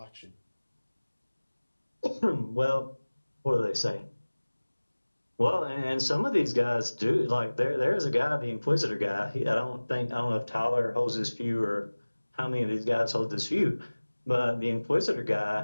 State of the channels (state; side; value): inverted; both; correlation -1.00